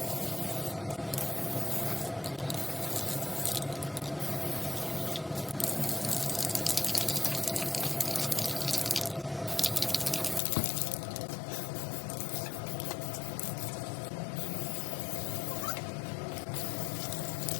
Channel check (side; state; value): right; drops out; at 10.4 s